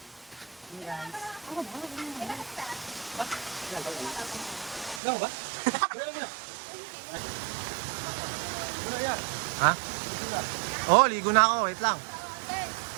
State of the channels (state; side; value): drops out; left; at 5.0 s